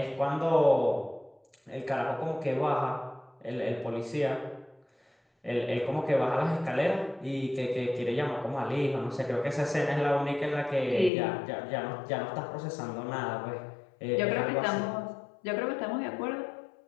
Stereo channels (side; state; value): right; drops out; at 11.1 s